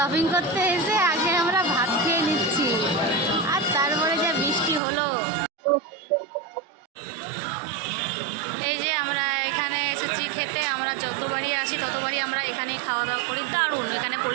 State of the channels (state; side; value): drops out; left; at 4.8 s